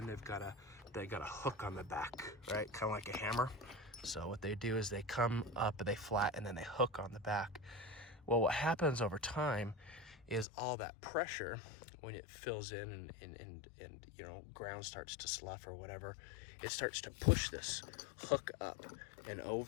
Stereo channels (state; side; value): drops out; right; at 10.5 s